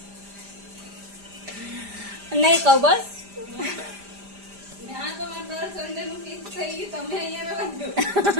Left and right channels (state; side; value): late; left; 5.0 ms